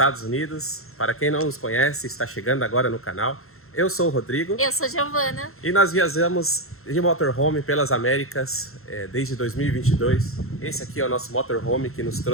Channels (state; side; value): late; right; 0.62 ms